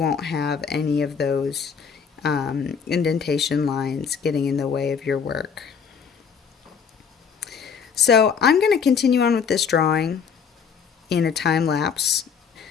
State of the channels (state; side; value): quieter; right; 6.5 dB